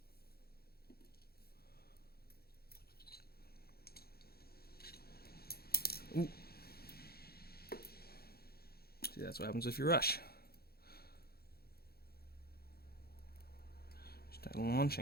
Ooh. See, that's what happens if you rush. Start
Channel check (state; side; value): late; right; 0.45 ms